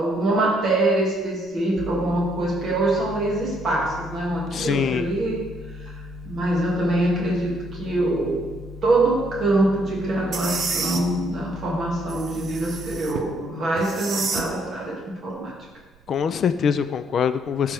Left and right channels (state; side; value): noise; right; rumble, 30 dB below the sound